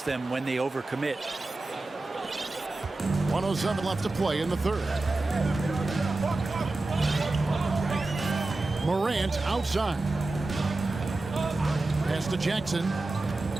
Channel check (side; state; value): left; quieter; 3.1 dB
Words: them when they overcommit. 1:07 left to play in the 3rd. Morant outside. Pass to Jackson.